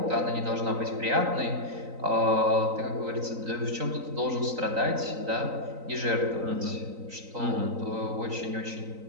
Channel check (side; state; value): left; late; 3.9 ms